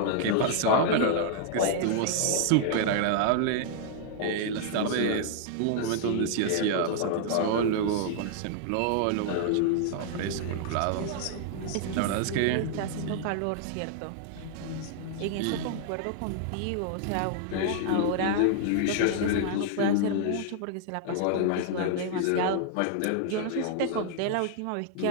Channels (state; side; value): different; both; correlation 0.00